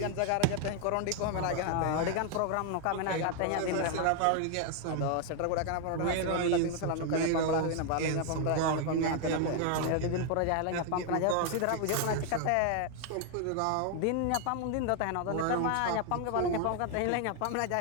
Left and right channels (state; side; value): different; both; correlation 0.00